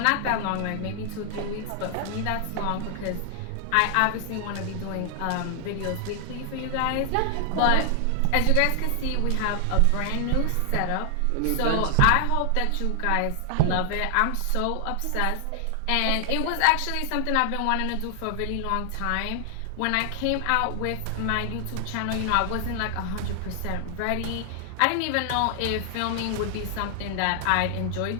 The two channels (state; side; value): different; both; correlation 0.00